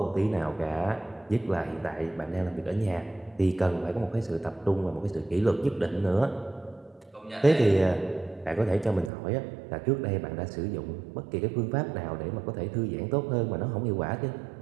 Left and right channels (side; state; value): left; drops out; at 9.1 s